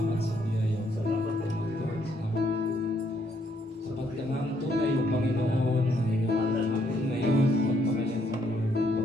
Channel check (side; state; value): both; normal; correlation 0.71